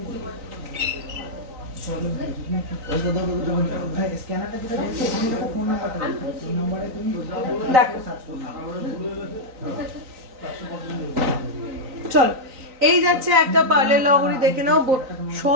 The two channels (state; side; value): late; left; 3.9 ms